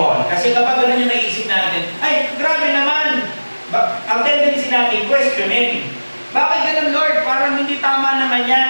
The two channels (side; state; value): both; inverted; correlation -1.00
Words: Kasi kapag ganun yung naisip natin, ay, grabe naman. Ang tendency natin, questioning. Bakit ganun, Lord? Parang hindi tama naman